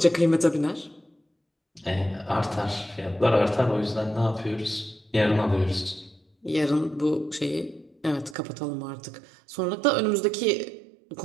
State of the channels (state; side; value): drops out; left; at 8.3 s